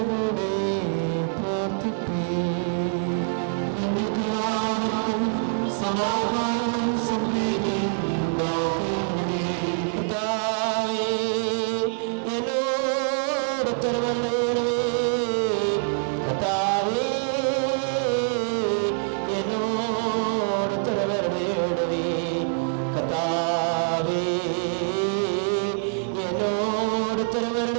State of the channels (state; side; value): silent; left; digital silence